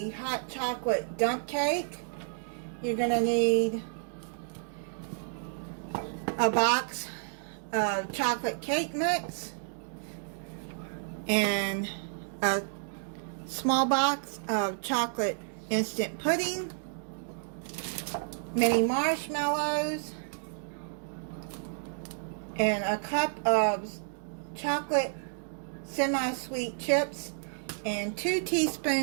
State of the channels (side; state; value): left; silent; digital silence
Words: hot chocolate dump cake. You're going to need a box of chocolate cake mix and a small box of chocolate instant pudding, mini marshmallows, and a cup of chocolate semi-sweet chips, and 2